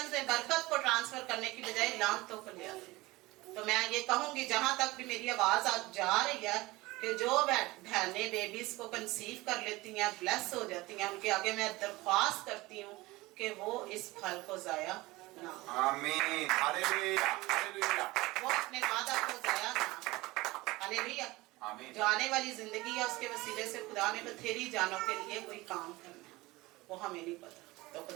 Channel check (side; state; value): left; quieter; 20.6 dB